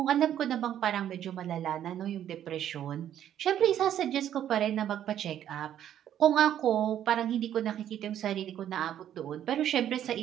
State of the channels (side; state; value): left; quieter; 10.7 dB